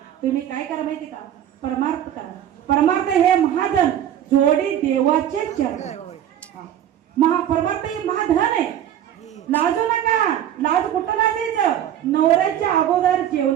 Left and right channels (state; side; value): quieter; left; 10.9 dB